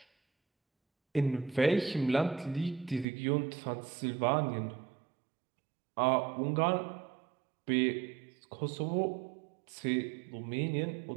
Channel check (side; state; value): left; drops out; at 3.1 s